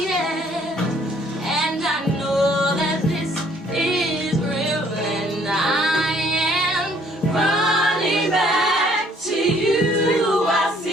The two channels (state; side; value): normal; both; correlation 0.62